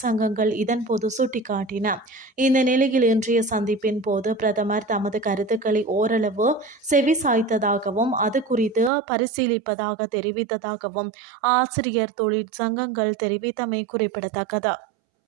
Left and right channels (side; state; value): left; drops out; at 8.9 s